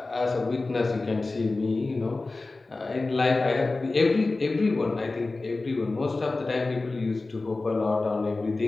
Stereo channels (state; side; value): quieter; right; 3.4 dB